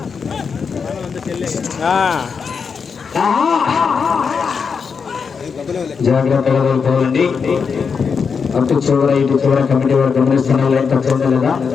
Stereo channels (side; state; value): right; quieter; 5.8 dB